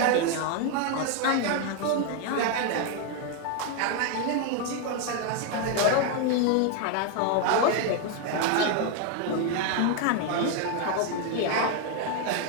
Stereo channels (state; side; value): different; both; correlation 0.01